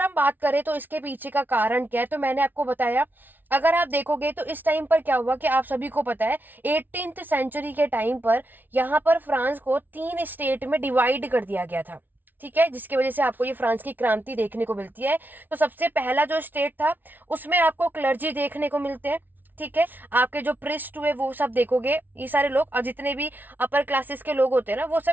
हम बात करें तो इसके पीछे का कारण क्या है, तो मैंने आपको बताया। अगर आप देखोगे तो इस टाइम पर क्या हुआ कि आप सभी को पता है 18th सेंचुरी के टाइम पर यहाँ पर फ्रांस को 3 स्टेट में डिवाइड कर दिया गया था। ठीक है, जिसकी वजह से आपको ये फ्रांस की क्रांति देखने को मिलती है। तो सबसे पहला जो स्टेट था उसमें आपको क्लर्जी देखने को मिलते हैं। ठीक है, आपके जो प्रिस्ट हुए वो सब देखोगे, ये सारे लोग और जितने भी अपर क्लासेस के लोग होते हैं ना, वो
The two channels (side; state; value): left; late; 0.087 ms